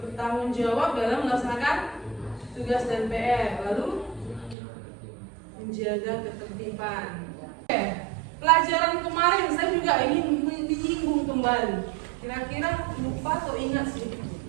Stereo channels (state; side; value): drops out; left; at 4.5 s